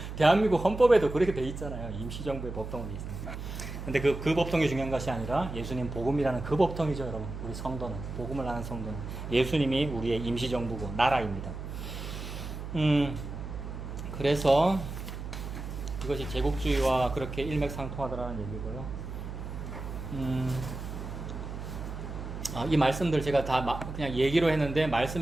대한민국 헌법에도 그렇게 돼 있잖아요. 임시정부의 법통이 있습니다. 근데 그 법통이 중요한 것이 아니라 예수님 복음이라는 그 법통이죠, 여러분. 우리 성도는, 복음을 아는 성도는 예수님이 우리의 임시정부고 나라입니다. 그래서 이것이 제국주의와 그렇게 일맥상통하더라는 얘기고요. 이 말씀들 제가 다 그냥 얘기로 했는데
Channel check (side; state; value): right; noise; hum, 8 dB below the sound